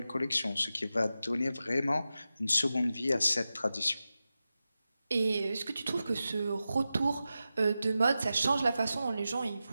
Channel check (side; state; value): both; inverted; correlation -0.92